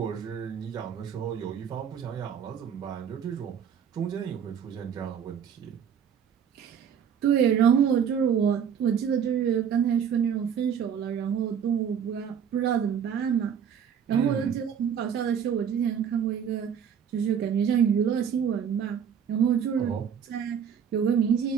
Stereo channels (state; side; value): quieter; left; 7.9 dB